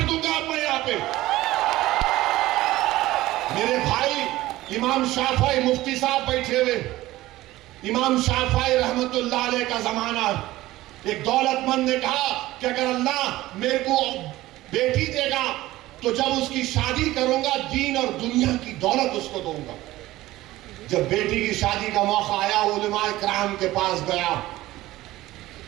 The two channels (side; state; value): left; quieter; 16.8 dB